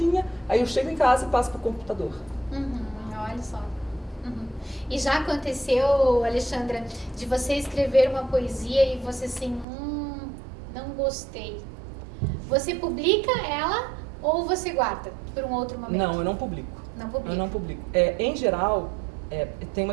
aí eu chego em casa e passo para o computador. Olha só. E já aconteceu, Alexandra, de você escrever uma poesia e você assim, não gostei. Você publica ela ou você guarda por um outro momento? Não, eu não publico. Não publica. Eu não publico. Em geral, tem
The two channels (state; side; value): drops out; left; at 9.7 s